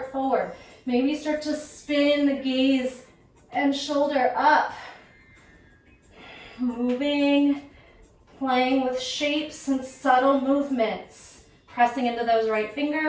forward. Maybe start to spin the gaze and shoulder up. Moving, playing with shapes and subtle movements. Pressing into those right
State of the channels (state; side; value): identical; both; correlation 1.00